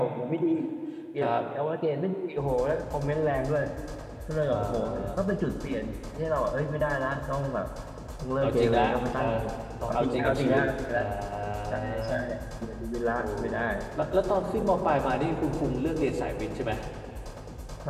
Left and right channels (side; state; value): both; identical; correlation 1.00